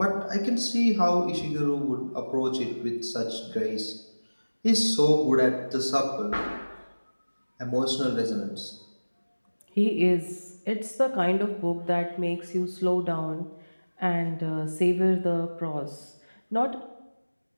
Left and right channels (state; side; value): inverted; both; correlation -1.00